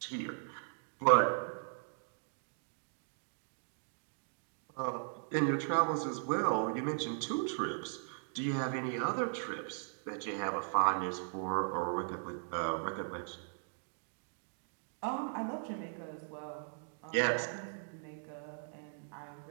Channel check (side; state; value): left; silent; digital silence